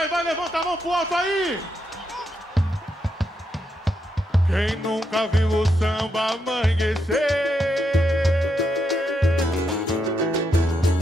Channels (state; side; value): normal; both; correlation 0.81